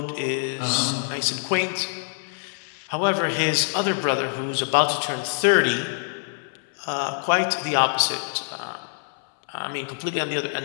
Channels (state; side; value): silent; right; 61 dB below the other